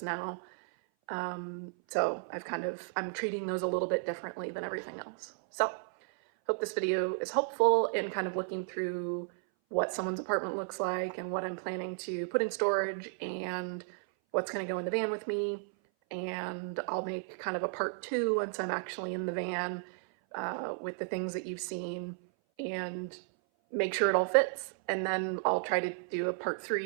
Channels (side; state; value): left; silent; 55 dB below the other